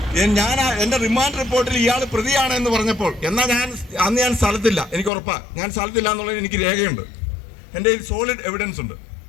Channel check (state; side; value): drops out; right; at 5.1 s